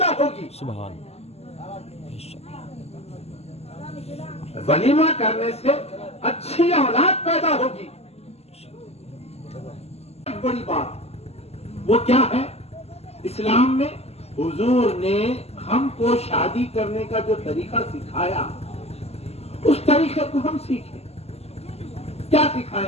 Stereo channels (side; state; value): right; late; 0.30 ms